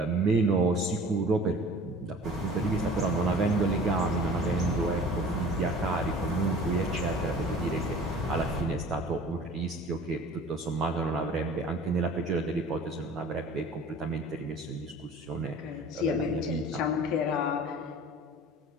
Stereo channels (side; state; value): both; normal; correlation 0.45